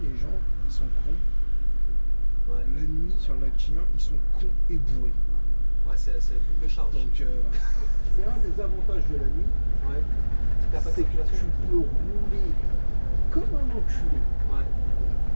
les gens ils sont cons. Ouais. La nuit sur le lac Chien ils sont cons et bourrés. Ouais c'est la double charge. Donc c'est un des avantages de la nuit. Ouais. C'est que tu peux rouler comme un enculé.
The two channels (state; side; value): inverted; both; correlation -1.00